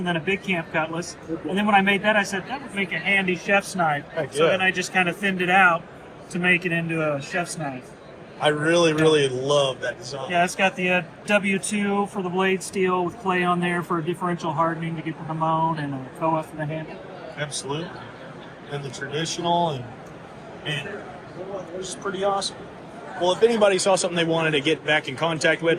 then a big camp cutlass. And then when I made that, I said, that would make a handy chef's knife. So then I just kind of thinned it out to make it into a chef's knife. I really, really love that design. Yeah, it's got the W2 for the blade steel with clay on there for differential hardening to get the moan, and a koa for the handle. Absolutely. And the traditional, and it's pretty awesome. Well, if anybody saw something they wanted to get back in contact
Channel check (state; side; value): identical; both; correlation 1.00